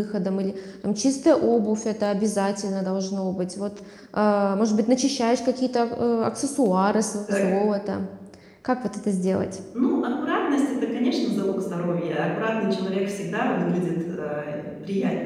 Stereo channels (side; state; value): both; identical; correlation 1.00